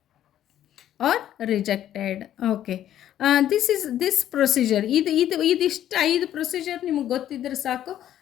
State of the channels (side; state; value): right; quieter; 11.6 dB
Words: or rejected. Okay, this procedure, ಇದಿಷ್ಟು 5 ಪ್ರೊಸೀಜರ್ ನಿಮಗೆ ಗೊತ್ತಿದ್ರೆ ಸಾಕು,